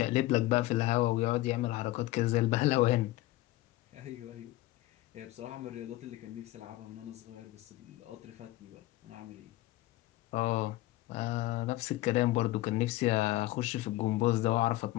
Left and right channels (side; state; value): right; quieter; 17.5 dB